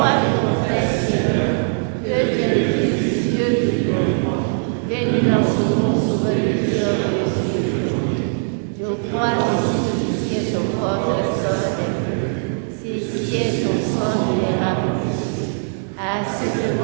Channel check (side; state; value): left; silent; 66 dB below the other